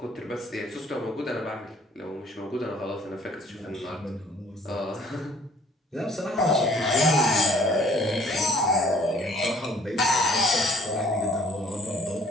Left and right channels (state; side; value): normal; both; correlation 0.57